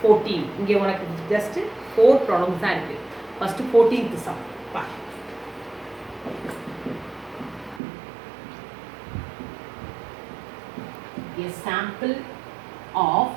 14. இங்கே உனக்கு ஜஸ்ட் 4 ப்ராப்ளம்ஸ் தான் இருக்குது. ஃபஸ்ட்டு 14th சம் பா. A sample of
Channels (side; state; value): left; drops out; at 7.8 s